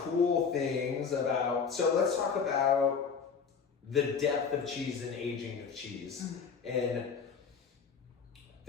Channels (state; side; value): quieter; right; 6.0 dB